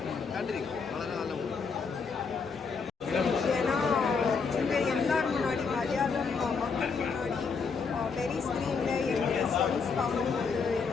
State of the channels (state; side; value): quieter; right; 5.2 dB